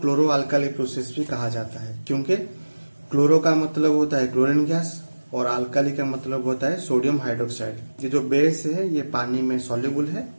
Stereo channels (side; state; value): both; inverted; correlation -1.00